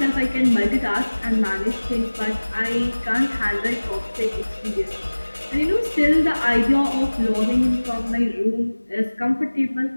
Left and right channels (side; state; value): both; inverted; correlation -1.00